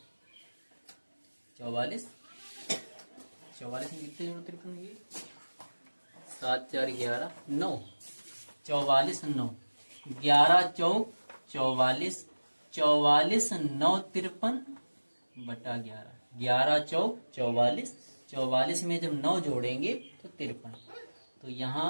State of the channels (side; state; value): both; inverted; correlation -1.00